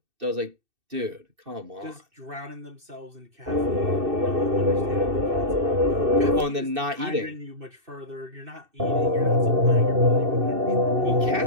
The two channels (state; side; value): late; left; 2.6 ms